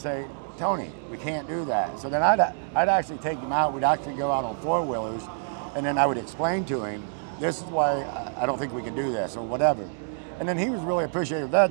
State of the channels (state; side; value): silent; left; digital silence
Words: Tony, we can't do that. So then I'd actually take him out. We'd actually go out on 4-wheelers, and then I would explain to him, this is why I don't think we can do this or whatever. And then he was really appreciative of